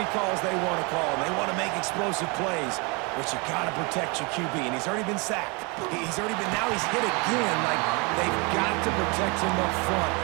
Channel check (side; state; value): left; quieter; 29.8 dB